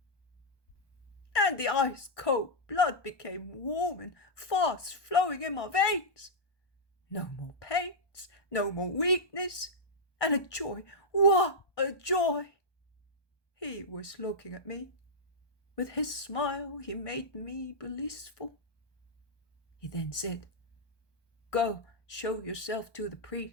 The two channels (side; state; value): right; late; 1.2 ms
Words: And the ice-cold blood became warm and fast flowing in my veins. No more pains, no more weakness, and a joy. What a joy! He was looking at me. With his smile, he made me blissful. He then said, "Go, show yourself to the